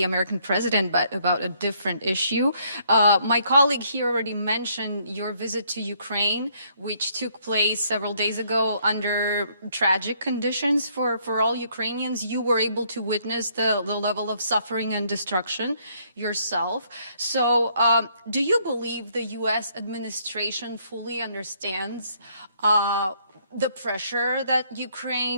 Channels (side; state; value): both; inverted; correlation -0.68